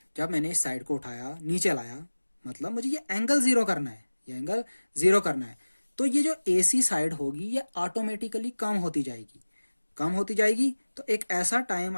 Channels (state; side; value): inverted; both; correlation -1.00